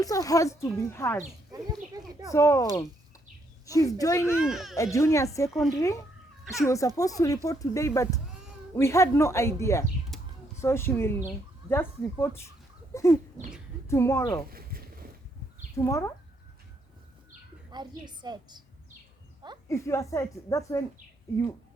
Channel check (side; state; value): both; normal; correlation 0.74